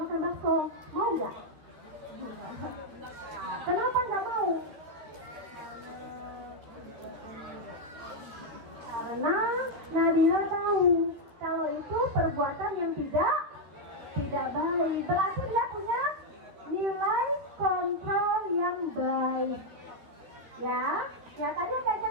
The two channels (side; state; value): left; late; 12 ms